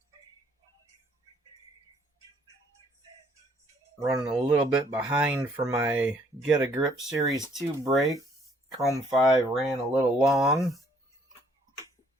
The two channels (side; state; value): both; normal; correlation 0.63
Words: Running a little bit behind for my Get a Grip Series 2 break. Chrome 5 ran a little long.